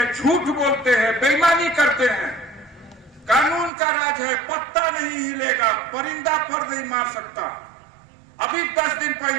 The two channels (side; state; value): left; drops out; at 3.7 s